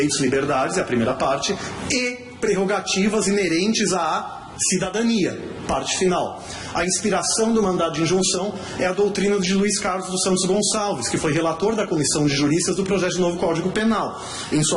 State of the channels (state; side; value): identical; both; correlation 1.00